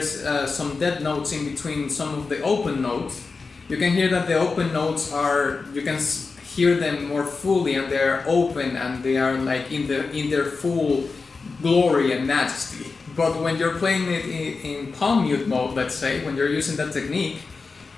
some dead notes in between some of the open notes. You can hear that the open notes you can hear them more fully, and they're open and they are like in their full glory and majesty. But when you're playing it in palm mute mode, let's say, when you're using that technique,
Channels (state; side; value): quieter; right; 4.4 dB